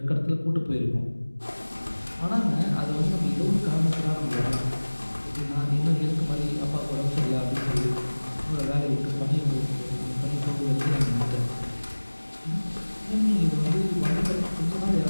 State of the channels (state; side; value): inverted; both; correlation -1.00